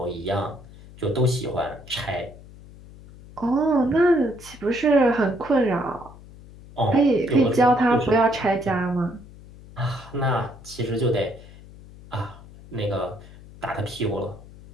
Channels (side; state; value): left; noise; hum, 19 dB below the sound